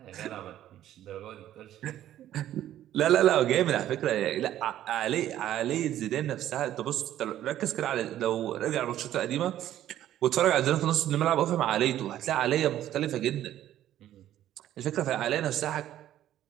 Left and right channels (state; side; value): quieter; left; 12.4 dB